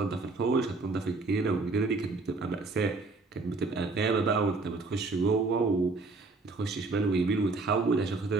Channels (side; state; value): left; quieter; 3.6 dB